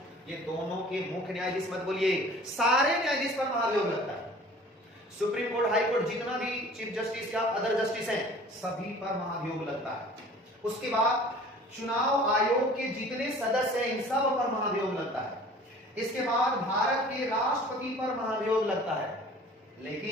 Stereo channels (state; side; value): normal; both; correlation 0.47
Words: ये दोनों के मुख्य न्यायाधीश मत बोलिए, सारे न्यायाधीश पर महाभियोग लगता है। सुप्रीम कोर्ट, हाई कोर्ट, जितना भी चीफ जस्टिस या अदर जस्टिस हैं, सभी पर महाभियोग लगता है। उसके बाद चुनाव आयोग के जितने सदस्य हैं, इन सब पर महाभियोग लगता है। इसके बाद भारत के राष्ट्रपति पर महाभियोग लगता है,